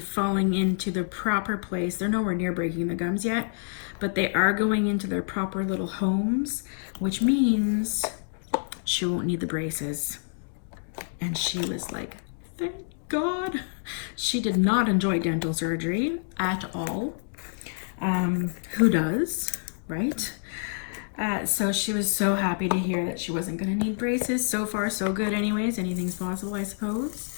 into the proper place. They're nowhere near breaking the gums yet, but they are going into their proper little homes, which means she won't need the braces. And she was like, thank God. She did not enjoy dental surgery at all. Who does, right? So she was so happy to hear that she wasn't going to need braces. So far, so good anyways. Anything's possible, I suppose.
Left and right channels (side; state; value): right; silent; digital silence